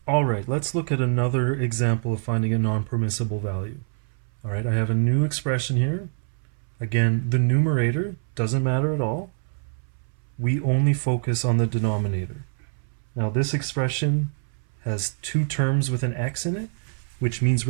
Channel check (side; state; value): left; silent; 62 dB below the other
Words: All right, let's look at another example of finding a non-permissible value. All right, I have a new expression here. Again, the numerator doesn't matter at all. We only focus on the denominator. Now this expression has two terms with an x in it, which means